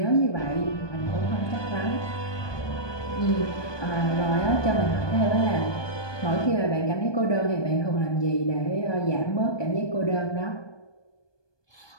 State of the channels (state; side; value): late; right; 1.2 ms